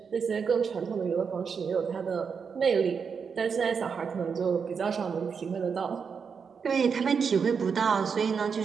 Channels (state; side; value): quieter; left; 6.1 dB